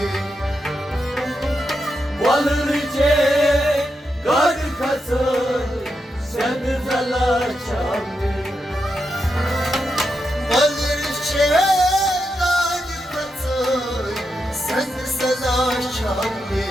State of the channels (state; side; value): normal; both; correlation 0.85